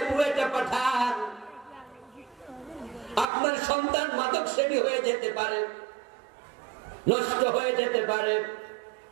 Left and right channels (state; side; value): drops out; left; at 3.2 s